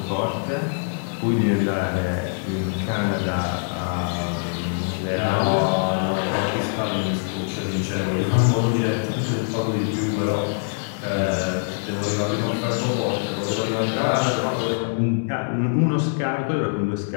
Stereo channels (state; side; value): silent; right; digital silence